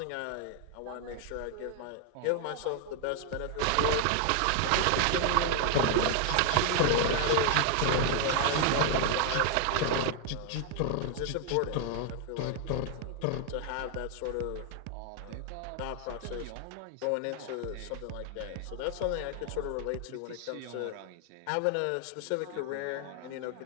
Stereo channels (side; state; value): both; different; correlation 0.00